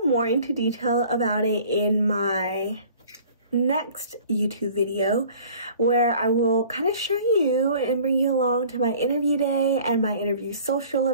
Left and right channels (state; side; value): inverted; both; correlation -0.49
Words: more into detail about it in my next YouTube video, where I will kind of show you and bring you along to my interview day and my interview social